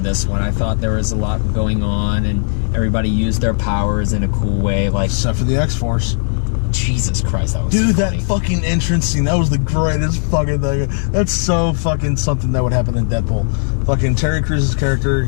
this one. I thought there was a lot going on and everybody used their powers in a cool way. Like, except for the X-Force. Jesus Christ, that was Dude, so funny. that fucking entrance scene, that was the greatest fucking thing. That's so fucking something that would happen in Deadpool. Fucking Terry Crews' character,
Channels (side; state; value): right; silent; 63 dB below the other